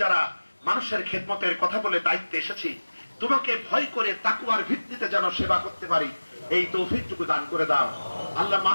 যারা মানুষের খেদমতের কথা বলে দায়িত্বে এসেছি, তোমাকে ভয় করে তাকওয়ার ভিত্তিতে যেন সেবা করতে পারি, এই তৌফিকটুকু দান করে দাও। আল্লাহ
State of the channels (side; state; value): both; inverted; correlation -1.00